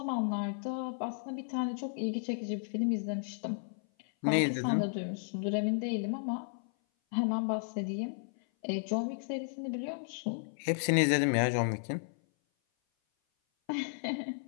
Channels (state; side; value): silent; right; 55 dB below the other